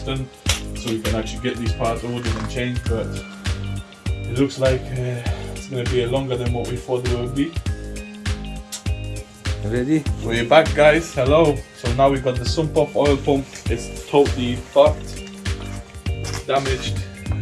so we can actually get these parts ordered and changed. But it looks like it's going to be longer than what we thought it would be. Ready? We're back, guys. Hello. So now we got the sump off oil pump. It's totally fucked, damaged.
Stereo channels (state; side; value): identical; both; correlation 1.00